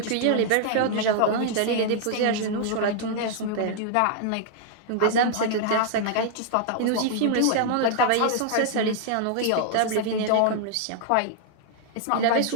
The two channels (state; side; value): different; both; correlation -0.01